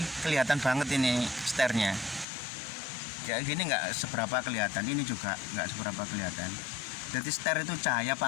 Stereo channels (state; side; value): drops out; right; at 2.2 s